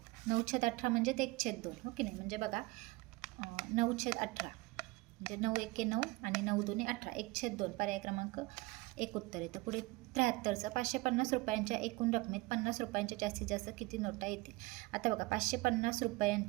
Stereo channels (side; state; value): left; quieter; 22.8 dB